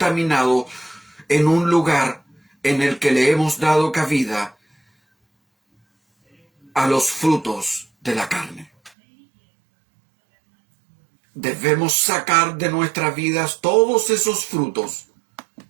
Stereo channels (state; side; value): drops out; left; at 8.9 s